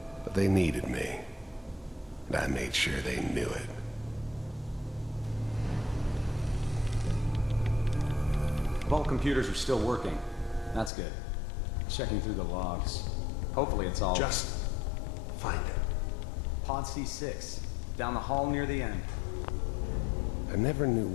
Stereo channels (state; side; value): drops out; right; at 10.9 s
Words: But they needed me, and I made sure they knew it. Vault computers are still working. That's good. Checking through the logs. Hopefully it's all... Just find it. Pod C6. Down the hall near the end. I never knew